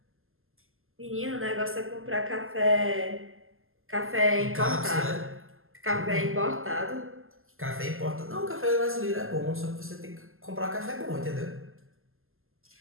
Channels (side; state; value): left; late; 0.61 ms